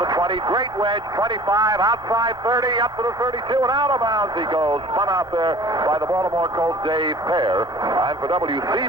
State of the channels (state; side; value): normal; both; correlation 0.46